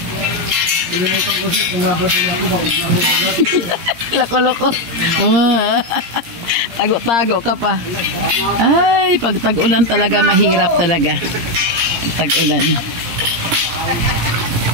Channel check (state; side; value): late; left; 17 ms